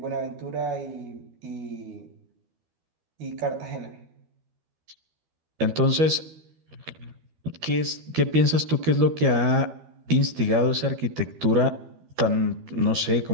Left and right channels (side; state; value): left; late; 12 ms